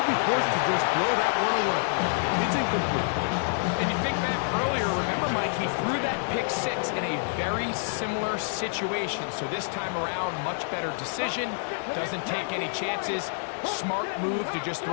be forced to just throw that one away. It's incomplete. And you think back earlier, remember, Mike, he threw that pick 6 in a very similar situation. So this time around, much better decision. Doesn't take any chances. Smart move to just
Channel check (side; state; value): right; silent; digital silence